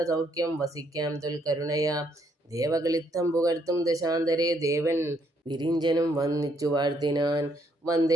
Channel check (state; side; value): normal; both; correlation 0.71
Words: വസിക്കാം തൊൽക്കരുണയാ. ദേവകളിത്തം പുകഴ്ത്തും ദശാന്തരേ, ദേവൻ വിരിഞ്ചനും വന്നിച്ചു വാഴ്ത്തിനാൻ.